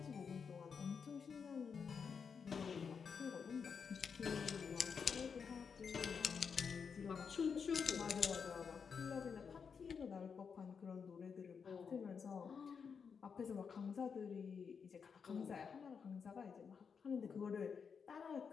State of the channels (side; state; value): right; quieter; 6.2 dB